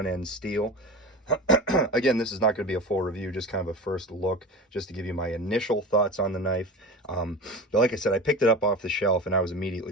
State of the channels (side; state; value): both; normal; correlation 0.31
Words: steel. Again, this is not going to be a full review, just kind of a first look, just to give you my initial thoughts on the knife. But like I said, I picked it up off the shelf and I was immediately